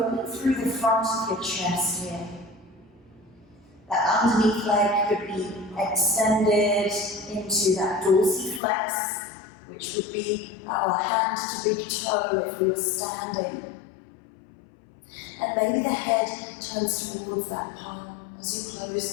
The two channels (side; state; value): right; drops out; at 8.6 s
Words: through the front of your chest here. That underneath leg could be extended into that dorsiflex, which would be our hand to big toe if we were standing. And maybe the head turns towards that palm as you